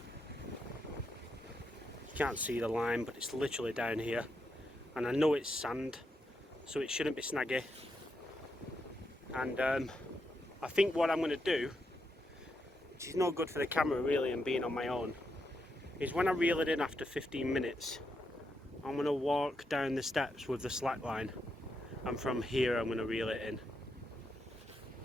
You can't see the line, but it's literally down here, and I know it's sand, so it shouldn't be snaggy. And I think what I'm going to do, which is no good for the camera really and being on my own, is when I reel it in after 15 minutes, I'm going to walk down the steps with the slack line, and from here I'm going to reel it in.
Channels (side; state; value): both; normal; correlation 0.82